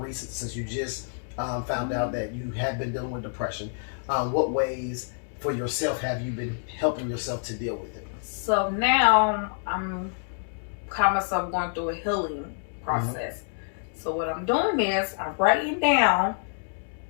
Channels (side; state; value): right; silent; digital silence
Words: since you just found out that you had been dealing with depression. What ways for yourself have you been helping yourself to deal with it? So now I'm call myself going through a healing process. So what I'm doing is I'm writing down